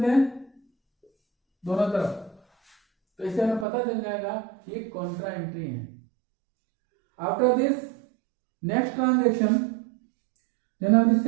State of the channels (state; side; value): drops out; left; at 3.7 s